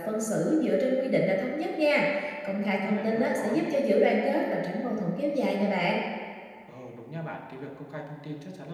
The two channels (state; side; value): identical; both; correlation 1.00